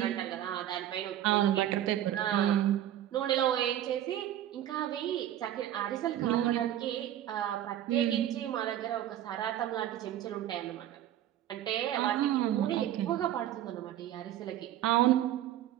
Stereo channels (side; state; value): left; quieter; 12.0 dB